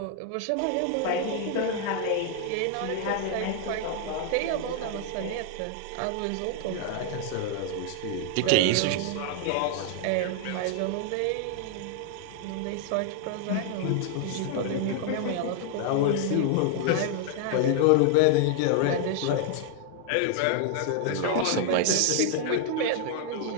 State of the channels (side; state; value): both; different; correlation 0.00